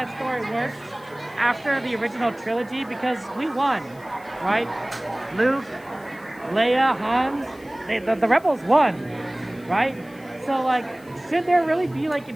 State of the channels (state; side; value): noise; left; hiss, 26 dB below the sound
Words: story works after the original trilogy because we won, right? Luke, Leia, Han, the Rebels won, right? So like, should there really be like